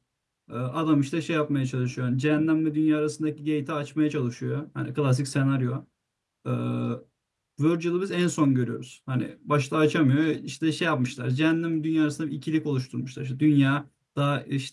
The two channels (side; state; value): both; identical; correlation 1.00